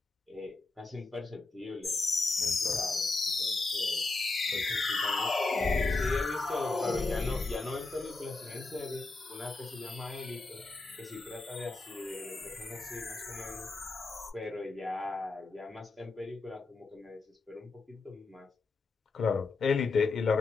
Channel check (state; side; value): quieter; right; 3.7 dB